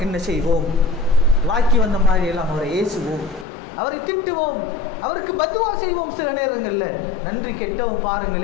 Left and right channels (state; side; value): drops out; right; at 3.5 s